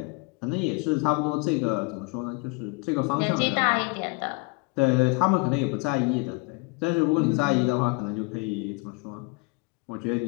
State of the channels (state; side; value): quieter; right; 30.0 dB